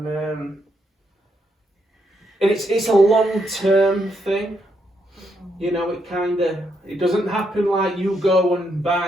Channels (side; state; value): both; normal; correlation 0.78